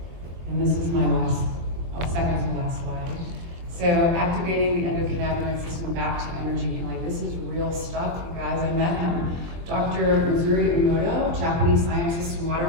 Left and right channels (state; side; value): late; left; 23 ms